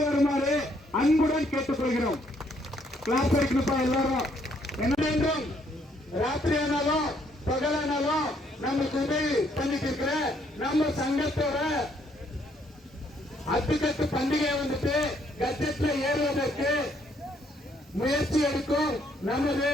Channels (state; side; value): normal; both; correlation 0.69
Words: வருமாறு அன்புடன் கேட்டுக்கொள்கிறோம். கிளாஸ் அடிக்கணுப்பா எல்லாரும். என்ன ராத்திரி ஆனாலும் பகலானாலும் நமக்கு உதவி பண்ணிட்டு இருக்கிற நம்ம சங்கத்தோட அத்துக்கட்டு பண்டிகை வந்துட்டு கட்டத்துல ஏறுவதற்கு முயற்சி எடுக்கும் நமது